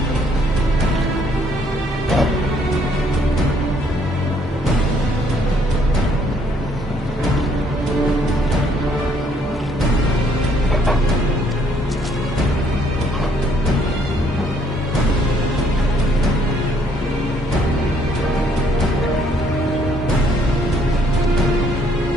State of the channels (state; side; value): normal; both; correlation 0.66